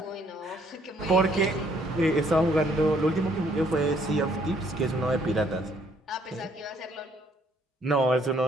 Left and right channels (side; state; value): both; normal; correlation 0.65